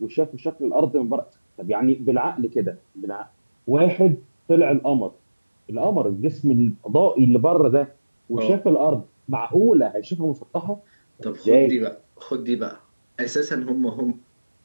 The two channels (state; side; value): inverted; both; correlation -1.00